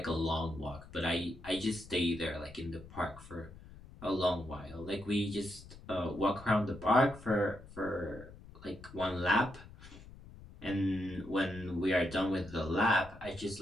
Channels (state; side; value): noise; left; rumble, 18 dB below the sound